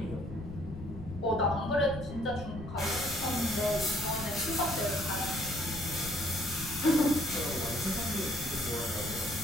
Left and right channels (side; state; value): left; noise; rumble, 10 dB below the sound